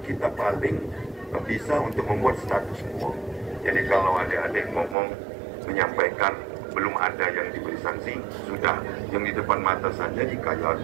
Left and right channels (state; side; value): drops out; left; at 5.0 s